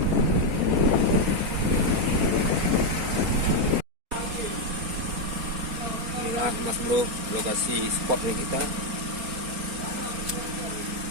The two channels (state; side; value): late; left; 4.3 ms